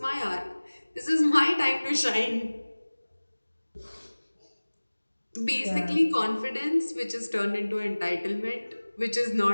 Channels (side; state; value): both; inverted; correlation -1.00